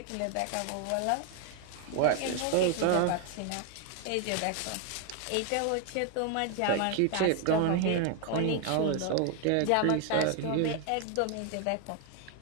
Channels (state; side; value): different; both; correlation 0.01